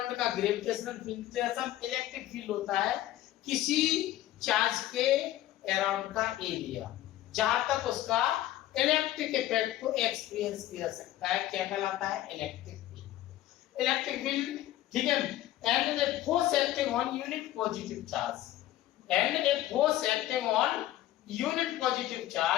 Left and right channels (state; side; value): quieter; right; 14.1 dB